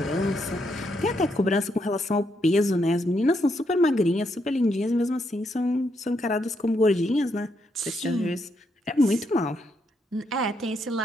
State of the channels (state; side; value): normal; both; correlation 0.78